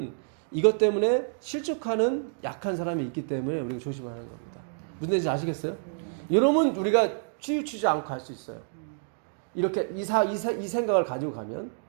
이것 때문에 실족하는 약한 사람이 있기 때문에 우리가 조심하는 겁니다. 무슨 뜻인지 아시겠어요? 여러분 우리가 치우치지 않고 할 수 있어요. 이렇게 이 생각을 가지고 가면.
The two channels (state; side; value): silent; left; digital silence